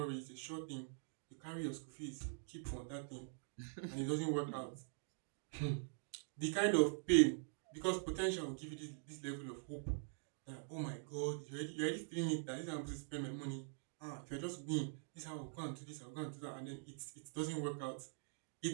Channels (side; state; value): left; silent; digital silence